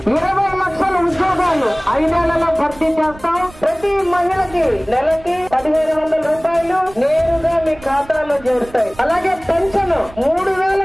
20 లక్షల ఉద్యోగాలు 5 నెలల్లో భర్తీ చేస్తాం. ప్రతి మహిళకి నెలకి 1500 రూపాయలు నేరుగా మీ ఖాతాలో చేరుతాయి. అలాగే పెన్షన్ 3000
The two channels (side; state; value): right; noise; rumble, 21 dB below the sound